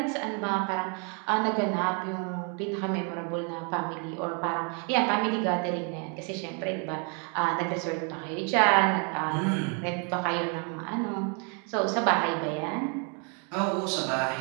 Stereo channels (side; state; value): left; quieter; 37.3 dB